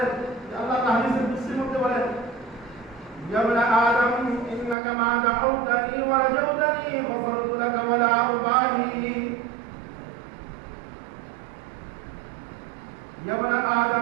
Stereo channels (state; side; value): drops out; left; at 4.8 s